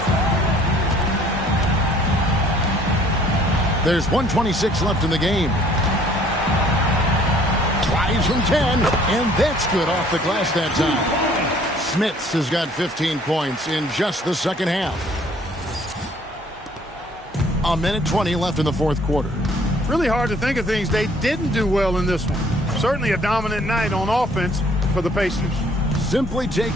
There's 1:26 left in the game. Tries from 10, and that's good off the glass that time. Smits has got 15 points in just the second half. 1:20 left in the fourth quarter. Really hard to think of things they didn't do well in this one. Certainly a dominant night on offense for the Pacers. Simply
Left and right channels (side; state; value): both; normal; correlation 0.58